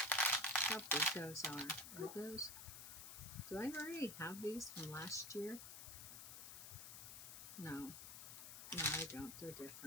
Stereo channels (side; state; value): left; noise; hiss, 10 dB below the sound